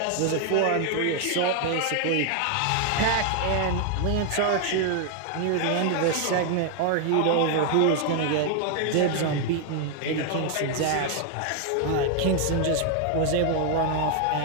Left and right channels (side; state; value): both; different; correlation 0.00